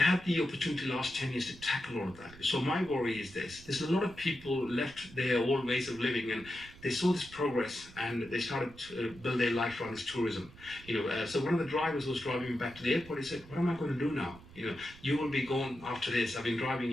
the opportunity last 10 years to tackle all of that. So my worry is this. There's a lot of people left their old ways of living, and they saw this progress and they started to build their life around this tourism. So one of the drivers was driving me back to the airport. He said, what am I going to do now? You will be gone after this. I've been driving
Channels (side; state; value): right; noise; rumble, 20 dB below the sound